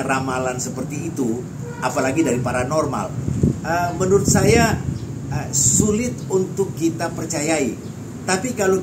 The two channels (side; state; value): both; identical; correlation 1.00